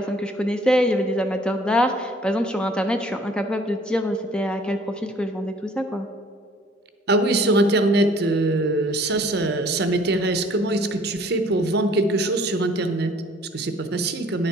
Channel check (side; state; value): both; normal; correlation 0.55